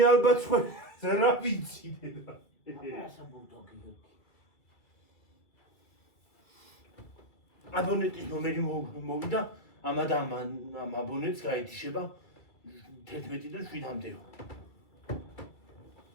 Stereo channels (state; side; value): late; right; 2.3 ms